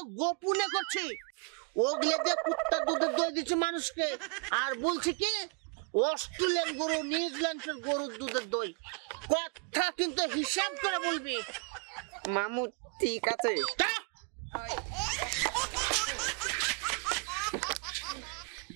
গোপনে করছি। ওগুলো দিয়ে কুত্তার দুধের দই দিচ্ছে মানুষকে, আর বলছি কি অস্ট্রেলিয়ান গরু নিউজিল্যান্ডের গরুর দুধের দই। কথা কিন্তু হিসাব করে বলবি। মামু ঠিক আছে।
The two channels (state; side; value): quieter; left; 37.9 dB